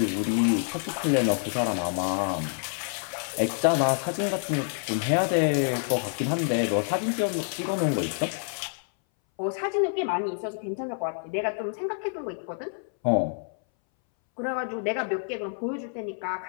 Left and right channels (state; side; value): silent; right; 60 dB below the other